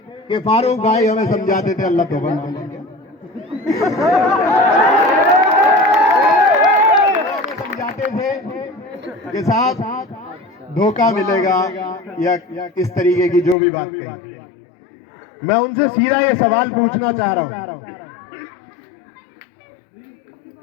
कि फारूक भाई हमें समझाते थे, अल्लाह तौबा, समझाते थे कि साहब धोखा मिलेगा या किस तरीके की जो भी बात कही। मैं उनसे सीधा ये सवाल पूछना चाह रहा हूं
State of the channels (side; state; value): right; drops out; at 13.6 s